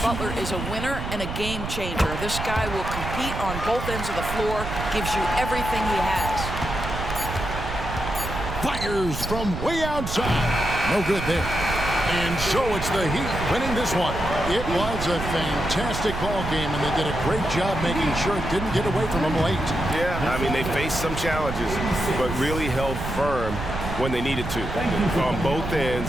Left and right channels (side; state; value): right; noise; rumble, 6 dB below the sound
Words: Butler is a winner and a game changer. This guy will compete on both ends of the floor, gives you everything he has. Fires from way outside. No good there. And so it's the Heat winning this one. It was a fantastic ball game, and they did a great job making sure it didn't get away from them late. Yeah, I mean, they faced some challenges, but really held firm when they needed to. On both